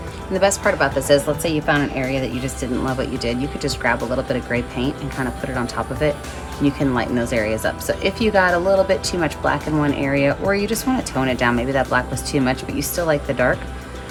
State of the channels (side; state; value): both; identical; correlation 1.00